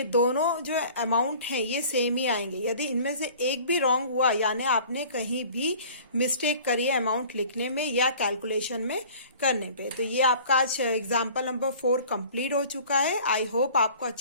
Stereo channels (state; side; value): inverted; both; correlation -0.47